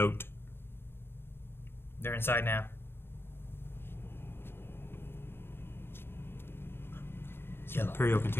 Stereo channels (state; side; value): late; right; 0.11 ms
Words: They're inside now. Yellow. Imperial